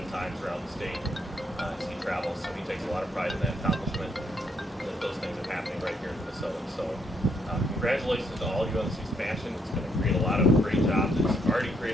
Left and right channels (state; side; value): normal; both; correlation 0.74